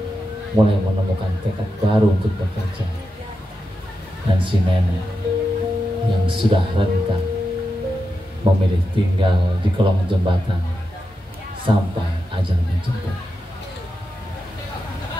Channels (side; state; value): both; normal; correlation 0.88